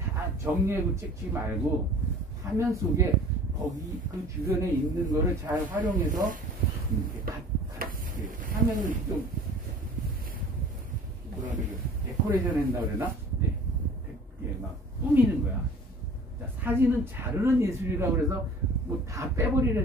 정리하고 찍지 말고 화면 속에 거기 그 주변에 있는 거를 잘 활용해서 이렇게 화면을 좀 뭐라 그래요? 데코레이션 한다 그러나? 네. 막 꾸미는 거야. 자, 사진은 자르는 예술이라고 그래서 뭐 다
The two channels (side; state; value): both; normal; correlation 0.46